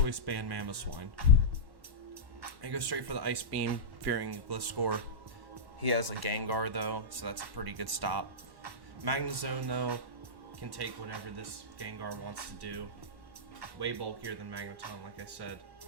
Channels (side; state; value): left; late; 1.1 ms